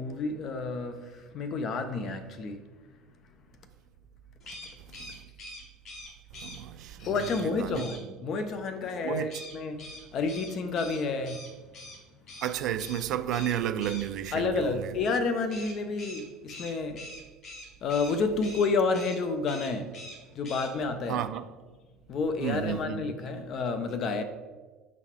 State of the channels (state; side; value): normal; both; correlation 0.41